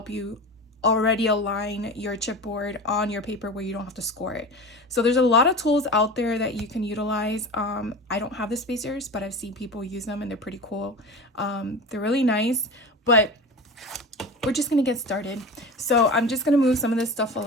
you already align your chipboard on your paper where you don't have to score it. So there's a lot of tools out there that you can utilize. I don't have the spacers, but I've seen people use them and they're pretty cool. They're really nice, but we're just gonna get started. So I'm just gonna move some of this stuff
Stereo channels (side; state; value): both; normal; correlation 0.31